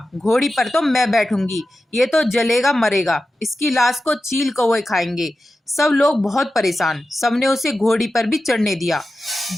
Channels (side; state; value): both; normal; correlation 0.93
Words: घोड़ी पर तो मैं बैठूंगी, ये तो जलेगा मरेगा, इसकी लाश को चील कौवे खाएंगे। सब लोग बहुत परेशान, सबने उसे घोड़ी पर भी चढ़ने दिया।